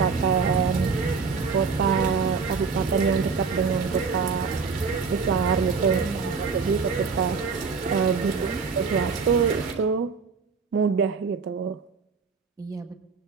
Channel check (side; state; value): left; quieter; 5.1 dB